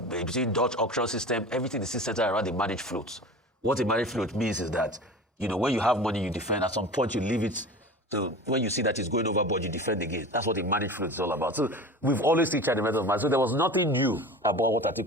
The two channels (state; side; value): normal; both; correlation 0.35